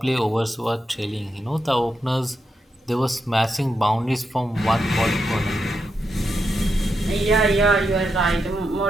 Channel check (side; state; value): both; normal; correlation 0.85